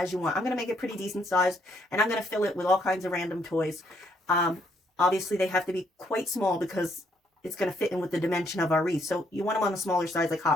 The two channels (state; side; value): normal; both; correlation 0.71